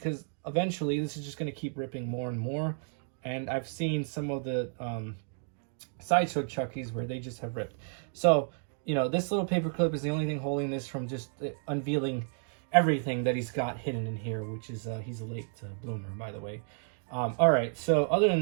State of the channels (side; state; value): left; silent; 57 dB below the other